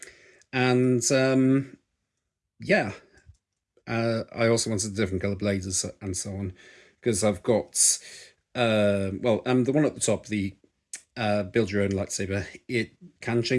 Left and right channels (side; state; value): both; identical; correlation 1.00